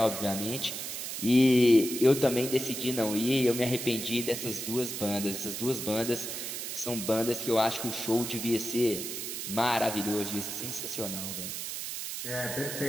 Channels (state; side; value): noise; right; hiss, 5 dB below the sound